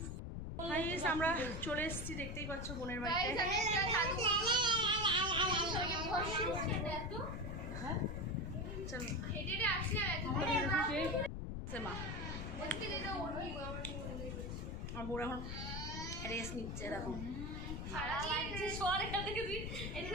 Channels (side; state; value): left; noise; rumble, 5 dB below the sound